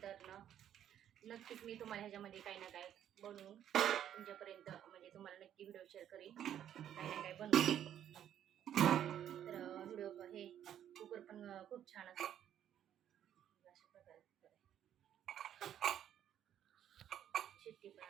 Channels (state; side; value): quieter; left; 10.4 dB